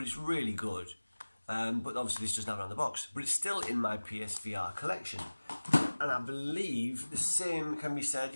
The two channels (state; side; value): inverted; both; correlation -1.00